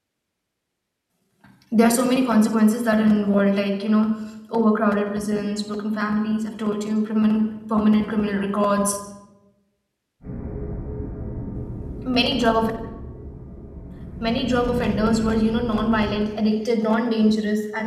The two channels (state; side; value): identical; both; correlation 1.00